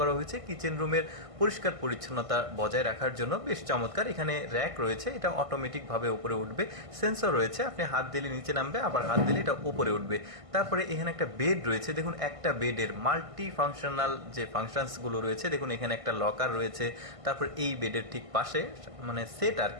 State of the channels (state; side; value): late; left; 1.5 ms